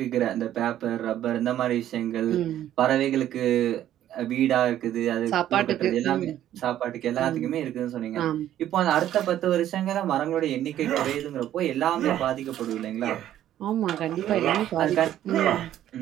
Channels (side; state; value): left; quieter; 12.0 dB